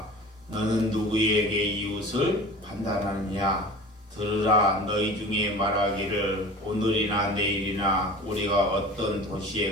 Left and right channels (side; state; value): both; normal; correlation 0.39